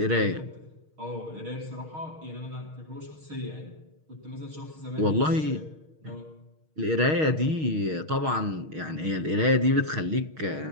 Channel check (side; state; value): left; late; 6.4 ms